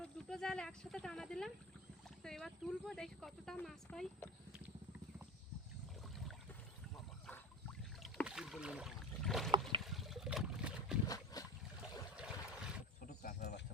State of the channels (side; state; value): both; normal; correlation 0.26